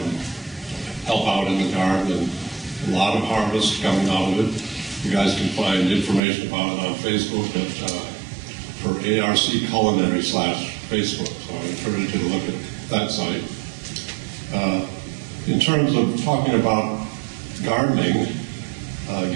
help out in the garden, and a lot of harvest coming out of it. You guys can find information about it on Facebook for ARC Culinary /Facebook. So I encourage you to look at that site. In terms of talking about gardening, I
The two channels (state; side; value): drops out; left; at 6.2 s